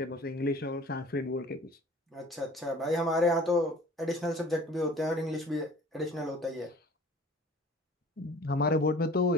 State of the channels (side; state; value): both; normal; correlation 0.47